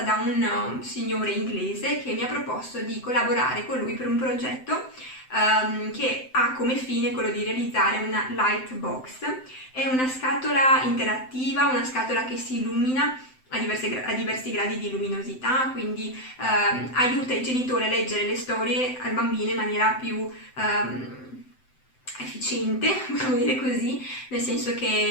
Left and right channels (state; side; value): late; right; 7.8 ms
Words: da un signore inglese che mi ha proposto di collaborare con lui per un progetto che ha come fine quello di realizzare una Lightbox. È una scatola interattiva, una scatola che si illumina a diversi gradi di luminosità, quindi aiuta i genitori a leggere le storie al bambino in maniera più efficiente, possiamo dire così, nel senso